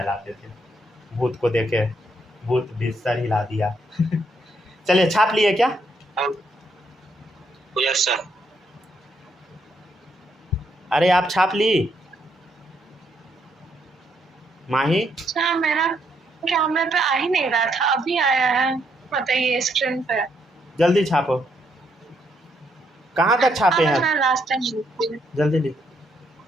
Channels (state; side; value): normal; both; correlation 0.75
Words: थे। भूत को देखे भूत भी सर हिला दिया। चलिए छाप लिए क्या? Yes sir. अरे आप छाप ली माही? अच्छा, मेरा कैमरे पे आ ही नहीं रहा था, अभी आया है। बताइए स्क्रीन पे। जल्दी छापो। कहाँ तक छापे हैं? लास्ट टाइम जल्दी लिख।